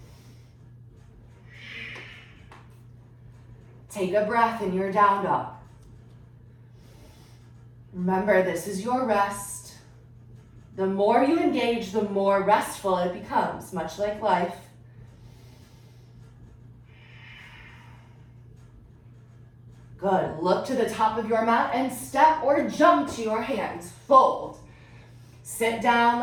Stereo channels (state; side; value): identical; both; correlation 1.00